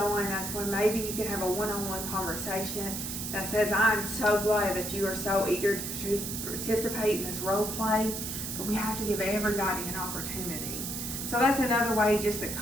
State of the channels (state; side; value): noise; right; hiss, 5 dB below the sound